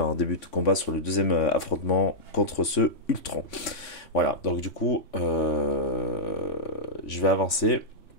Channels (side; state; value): right; late; 3.5 ms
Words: début de combat sur le deuxième affrontement contre ce Ultron. Voilà, donc du coup, je vais avancer.